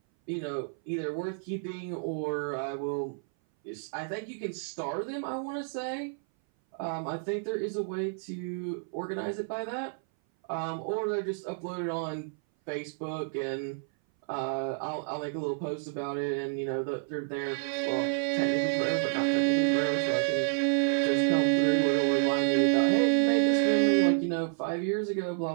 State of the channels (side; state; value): left; silent; 58 dB below the other